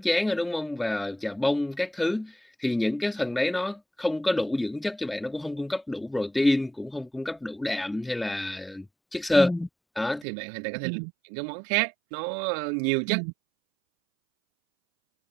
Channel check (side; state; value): left; drops out; at 10.2 s